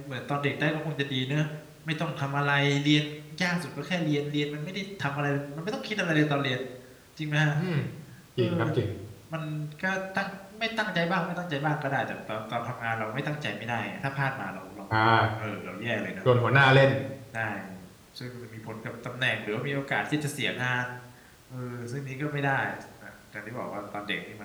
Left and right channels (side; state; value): both; identical; correlation 1.00